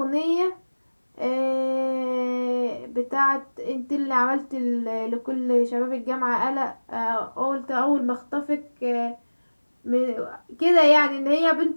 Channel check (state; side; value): inverted; both; correlation -1.00